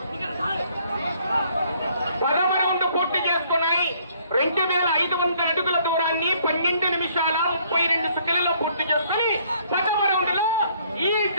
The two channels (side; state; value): both; inverted; correlation -0.63